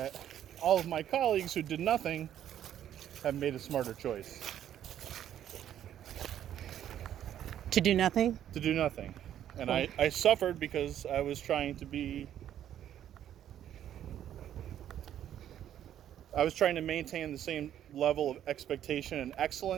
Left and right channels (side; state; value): left; quieter; 10.8 dB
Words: all of my colleagues who did nothing have made a smarter choice. To do nothing? To do nothing. And I suffered because I was trying to maintain the same level of expectation and